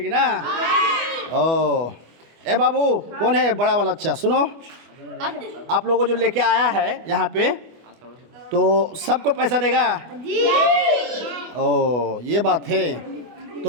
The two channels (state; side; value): late; left; 24 ms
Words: ना? ओ, ए बाबू, कौन है बड़ा वाला? अच्छा सुनो, आप लोगों को जो लेके आया है यहाँ पे, तो सबको पैसा देगा? ओ, ये बात है।